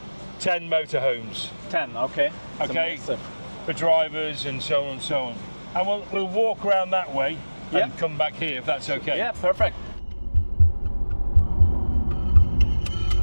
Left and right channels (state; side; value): inverted; both; correlation -1.00